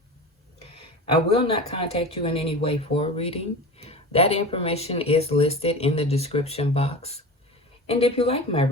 I will not contact you in any way for a reading. That information is listed in the description box. And if you like my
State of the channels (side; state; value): both; normal; correlation 0.31